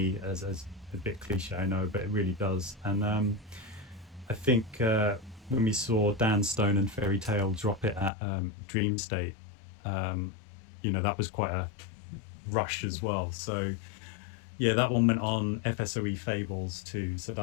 as a bit cliche, I know, but it really does. And I think when we saw Dan Stone and Fairy Tale drop it at Dream State, that was quite a rush as well. So yeah, that one went on FSOE Fables too. So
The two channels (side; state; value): right; drops out; at 8.1 s